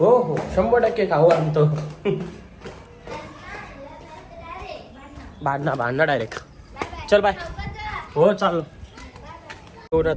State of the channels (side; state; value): both; identical; correlation 1.00